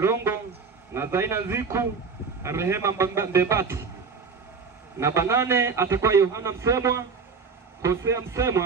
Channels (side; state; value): left; quieter; 5.2 dB